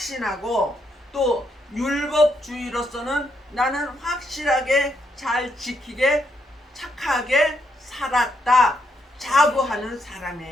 또 율법주의로서는 나는 확실하게 잘 지키게 착하게 살았다 자부하는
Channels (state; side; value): normal; both; correlation 0.77